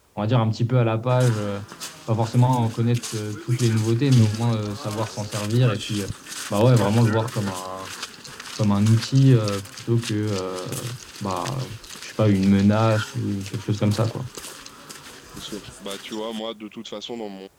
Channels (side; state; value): both; identical; correlation 1.00